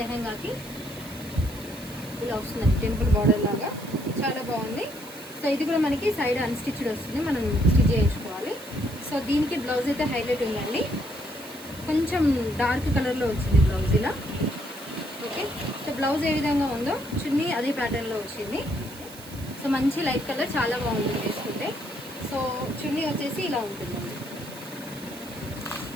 ఇలా వస్తుందండి, టెంపుల్ బార్డర్ లాగా చాలా బాగుంది. సో ఇది కూడా మనకి సైడ్ అన్స్టిచ్డ్ వస్తుంది, మనం స్టిచ్ చేయించుకోవాలి. సో దీనికి బ్లౌజ్ అయితే హైలైట్ ఉందండి, కొంచెం డార్క్ కలర్లో వచ్చింది బ్లౌజ్ ఇలా. ఓకే, సో బ్లౌజ్ ఏ విధంగా ఉందో చున్నీ అదే ప్యాటర్న్లో వచ్చింది. సో మంచి లైట్ కలర్, చాలా బాగుంటుంది వేసుకుంటే. సో చున్నీ వచ్చేసి ఇలా ఉంటుందండి,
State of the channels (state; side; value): noise; right; hiss, 17 dB below the sound